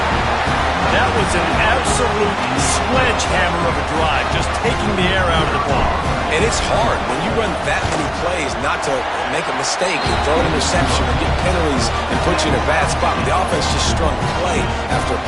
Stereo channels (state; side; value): identical; both; correlation 1.00